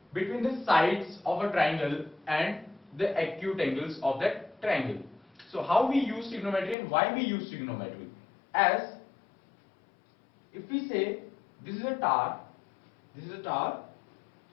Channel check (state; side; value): drops out; right; at 6.8 s